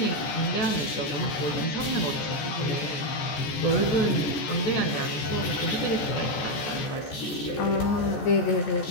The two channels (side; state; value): right; late; 14 ms